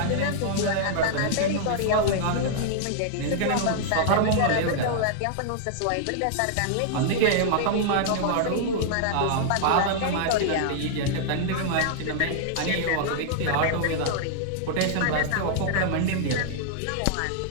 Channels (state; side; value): different; both; correlation -0.01